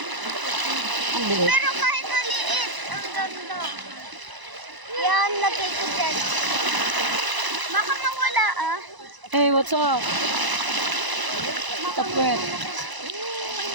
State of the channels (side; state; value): left; late; 1.0 ms